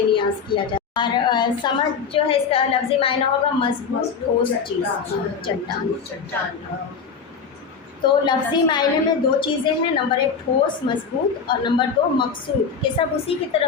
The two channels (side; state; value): right; quieter; 5.9 dB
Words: نیاز کیا جاتا ہے۔ اور صمد جو ہے اس کا لفظی معنی ہوگا مضبوط ٹھوس چیز، چٹان۔ تو لفظی معنی میں دو چیزیں ہیں، نمبر 1 ٹھوس مضبوط، اور نمبر 2 مقصود، کہ سب اسی کی